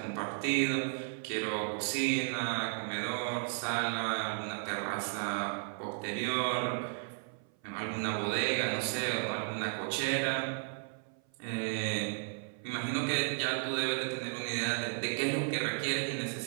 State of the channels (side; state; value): left; silent; 55 dB below the other